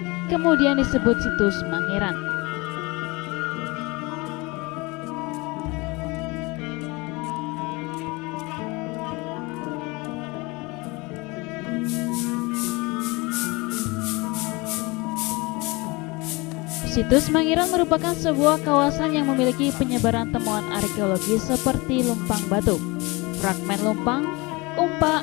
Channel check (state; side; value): quieter; right; 25.0 dB